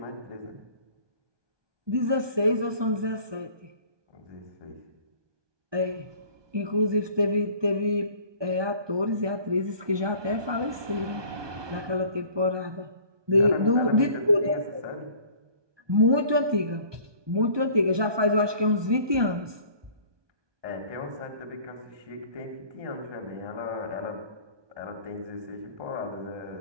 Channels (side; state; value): left; late; 1.2 ms